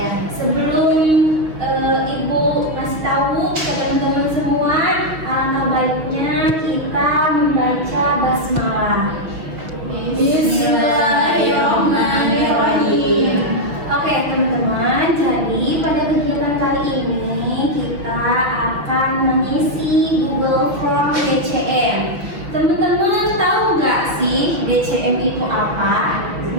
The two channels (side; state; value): left; late; 6.4 ms